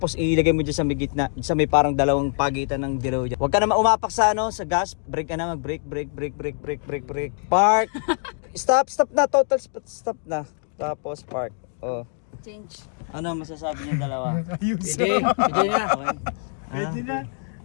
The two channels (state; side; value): silent; right; 56 dB below the other